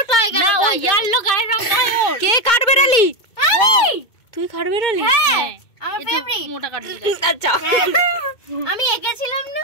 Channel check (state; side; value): late; right; 2.2 ms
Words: টাইগার না ও ইয়েলো গায়ের রং ওর কে কাটবে রালি তুই কাটবে রালি হ্যাঁ আমার ফেভারিট মোটা কাঠবিড়ালি আচ্ছা আমি এঁকেছিলাম না